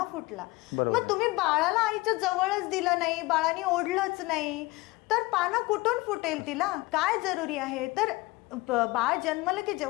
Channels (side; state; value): right; quieter; 22.0 dB